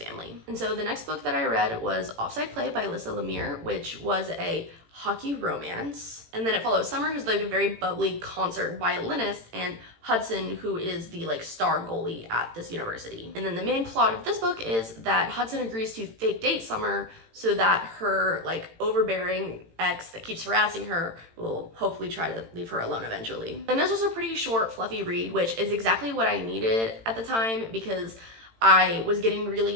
And so the next book that I read was Offside Play by Alyssa Lemire, which was a hockey romance. And then it follows Summer, who's like a very bubbly concert violinist, and Hudson, who is the like star goalie at this university. And then the main plot of this book is that Hudson agrees to fake date Summer so that her like overbearing ex that keeps harassing her will hopefully try to leave her alone eventually. And this was a pretty short, fluffy read, which is exactly what I needed at the time because I was getting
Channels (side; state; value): left; late; 18 ms